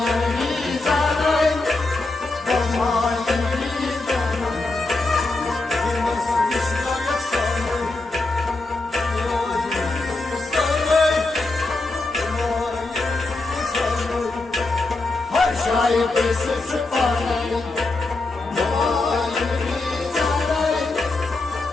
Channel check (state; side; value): quieter; right; 3.2 dB